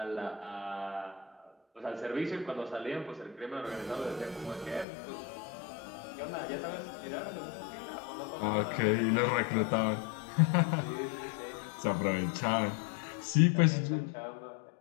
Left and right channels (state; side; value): drops out; right; at 4.9 s